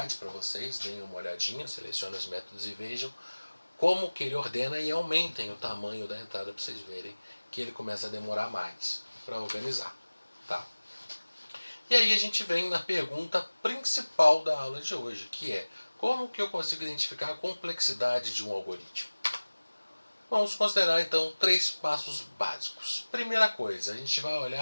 para vocês, deem uma olhadinha, selecionem os métodos e vejam como que ele ordena e aumentem o tamanho da entrada para vocês verem que ele começa a demorar mais para organizar. Tá? E aí a gente vem na pergunta principal da aula de hoje, que é: como que eu consigo identificar a complexidade de um algoritmo? Vamos considerar então 3 passos básicos. Primeira coisa, a gente vai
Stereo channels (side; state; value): both; inverted; correlation -1.00